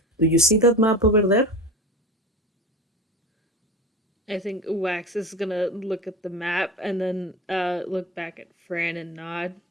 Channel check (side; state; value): both; normal; correlation 0.30